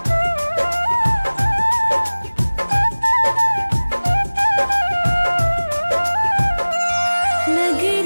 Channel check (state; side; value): inverted; both; correlation -1.00